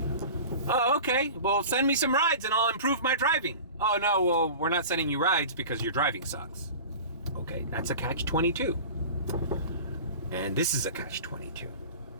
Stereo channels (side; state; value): both; inverted; correlation -0.36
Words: Oh, okay. Well, send me some rides and I'll improve my driving. Oh, no, well, we're not sending you rides because your driving sucks. Okay, that's a catch-22. And this is a catch-22.